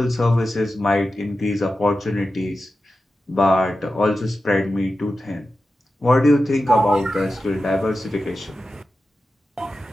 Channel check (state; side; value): normal; both; correlation 0.92